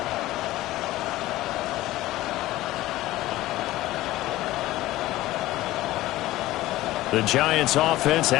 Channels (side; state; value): right; quieter; 16.6 dB